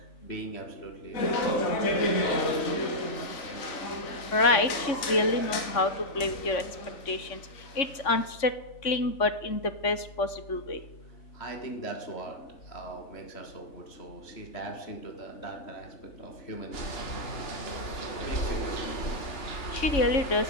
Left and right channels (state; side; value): late; right; 3.6 ms